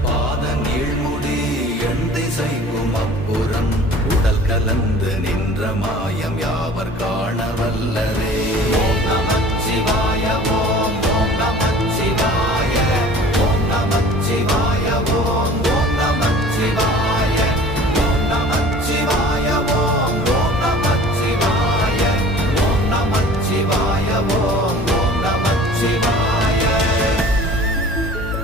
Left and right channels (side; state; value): both; normal; correlation 0.45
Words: பாத நீழ்முடி எண் திசைக்கும் அப்புறம் உடல் கலந்து நின்ற மாயம் யாவர் காண வல்லரே. ஓம் நமச்சிவாய ஓம் ஓம் நமச்சிவாய ஓம் நமச்சிவாய ஓம் ஓம் நமச்சிவாய ஓம் நமச்சிவாய ஓம் ஓம் நமச்சிவாய ஓம் நமச்சிவாய ஓம் ஓம் நமச்சிவாய.